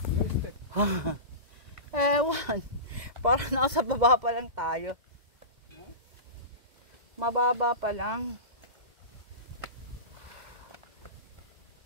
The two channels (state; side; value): late; left; 2.0 ms